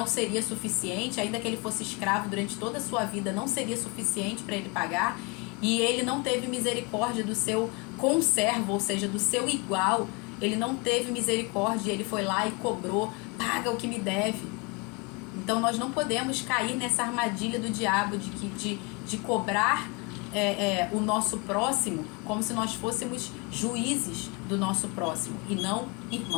seria suficiente, ainda que ele fosse escravo durante toda a sua vida, não seria suficiente para ele pagar, e ele não teve misericórdia do seu conservo, ou seja, do seu igual, ele não teve misericórdia, ele foi lá e cobrou, paga o que me deve. Então nós não podemos cair nessa armadilha do diabo de cobrar o nosso próximo como se nós fôssemos juízes do nosso próximo e não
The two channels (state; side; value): quieter; right; 29.6 dB